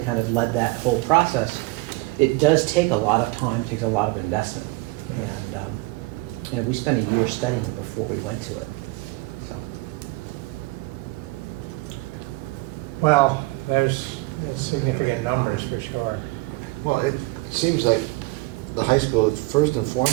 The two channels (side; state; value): left; quieter; 22.7 dB